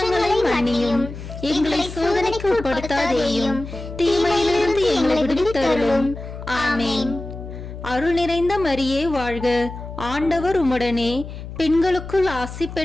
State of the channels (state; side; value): noise; left; hum, 11 dB below the sound